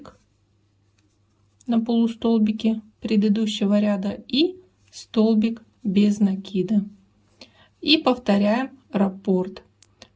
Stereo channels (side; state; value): both; identical; correlation 1.00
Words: на полустолбике предыдущего ряда и столбик без накида. И повторяем раппорт.